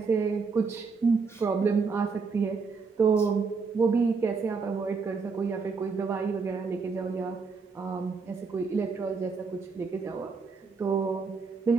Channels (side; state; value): left; quieter; 4.8 dB